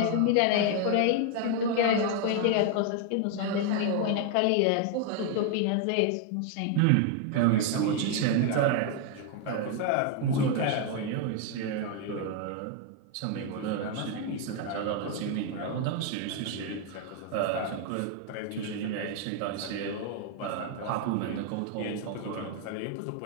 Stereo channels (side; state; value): both; different; correlation 0.00